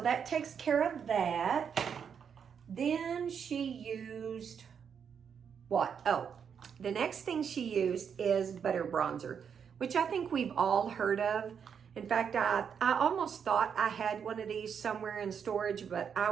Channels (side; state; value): left; quieter; 7.2 dB